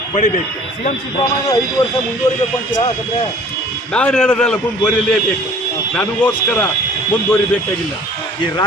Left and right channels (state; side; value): normal; both; correlation 0.51